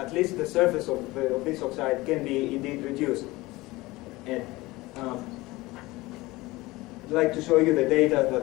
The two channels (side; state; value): right; quieter; 20.5 dB